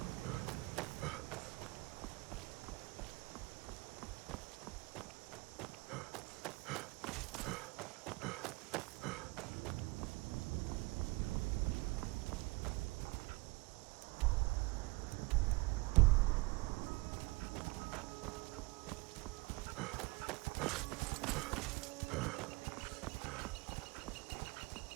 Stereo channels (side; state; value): left; quieter; 24.2 dB